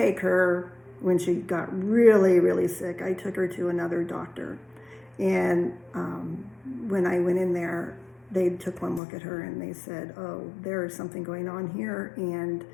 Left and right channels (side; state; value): right; drops out; at 9.0 s